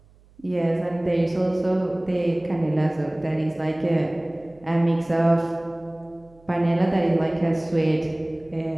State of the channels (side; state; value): right; noise; hum, 28 dB below the sound